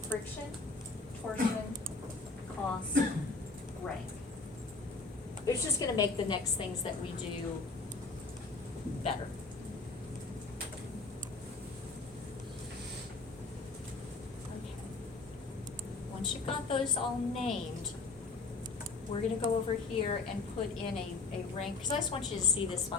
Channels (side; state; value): right; quieter; 3.9 dB